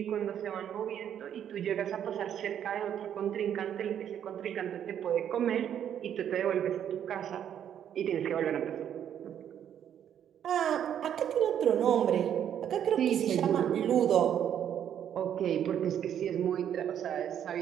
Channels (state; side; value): quieter; left; 9.5 dB